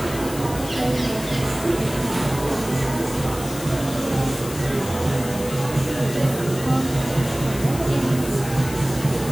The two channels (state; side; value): noise; left; hiss, 12 dB below the sound